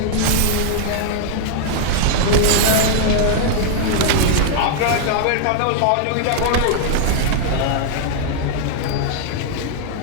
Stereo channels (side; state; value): both; different; correlation -0.01